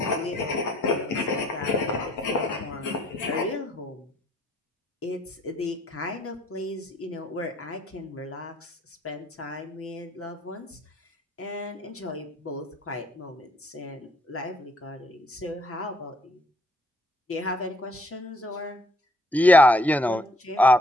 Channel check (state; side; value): normal; both; correlation 0.65